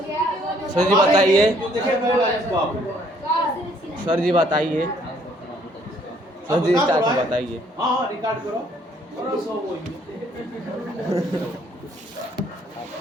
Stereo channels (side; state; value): both; normal; correlation 0.64